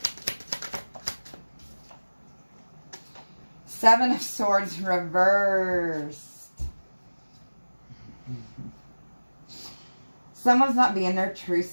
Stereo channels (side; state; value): both; inverted; correlation -1.00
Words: Seven of Swords reversed. Someone's not being their true